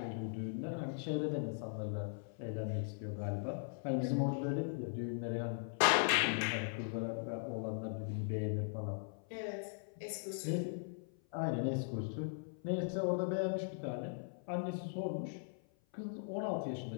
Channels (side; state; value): right; silent; 51 dB below the other